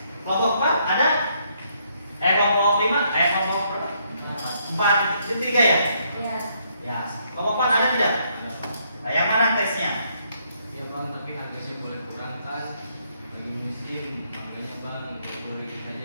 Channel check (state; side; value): inverted; both; correlation -0.72